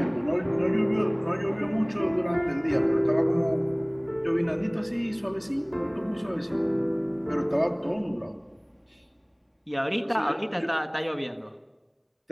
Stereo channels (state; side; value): identical; both; correlation 1.00